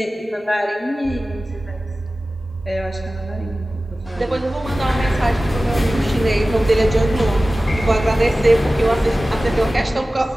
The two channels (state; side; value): normal; both; correlation 0.96